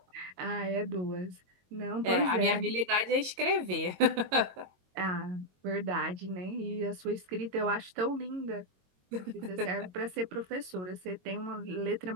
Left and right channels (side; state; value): left; late; 22 ms